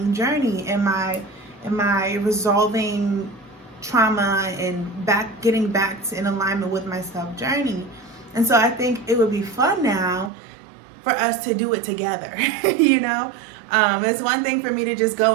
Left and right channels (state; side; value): drops out; left; at 10.3 s